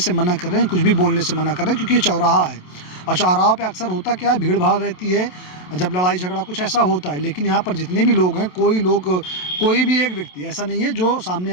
मना कर रहे हैं, कुछ भी बोलने से मना कर रहे हैं, क्योंकि ये चौराहा है और चौराहों पे अक्सर होता क्या है, भीड़ भाड़ रहती है, जब लड़ाई झगड़ा कुछ ऐसा होता है। लेकिन यहाँ पर जितने भी लोग हैं, कोई भी एक व्यक्ति ऐसा नहीं है जो सामने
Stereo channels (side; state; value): right; late; 27 ms